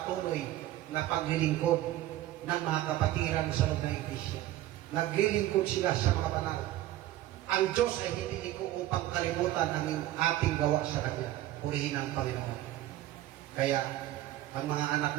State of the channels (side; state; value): left; quieter; 14.6 dB